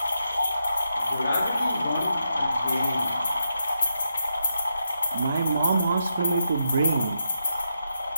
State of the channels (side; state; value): both; inverted; correlation -0.83